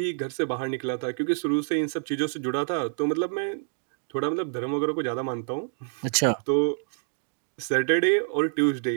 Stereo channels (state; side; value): silent; left; 60 dB below the other